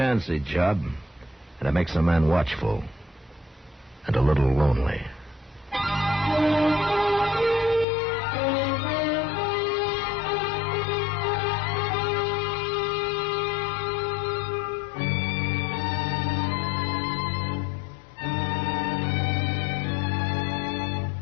job, and it makes a man watchful and a little lonely.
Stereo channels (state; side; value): drops out; right; at 7.9 s